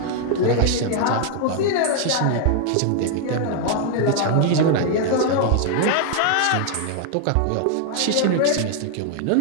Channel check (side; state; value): both; different; correlation 0.00